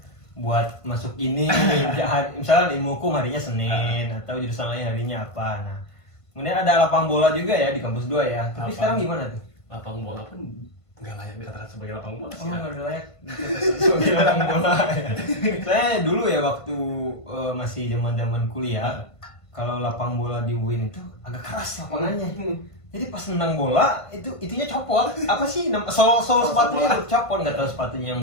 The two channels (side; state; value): right; late; 1.5 ms